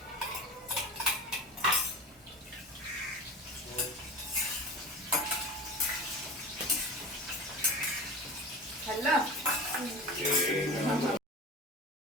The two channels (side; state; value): both; normal; correlation 0.34